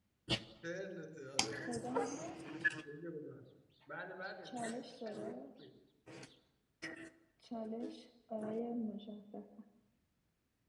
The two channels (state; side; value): identical; both; correlation 1.00